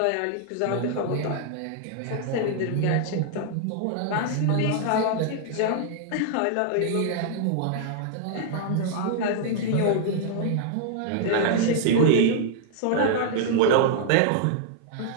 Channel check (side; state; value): both; different; correlation -0.01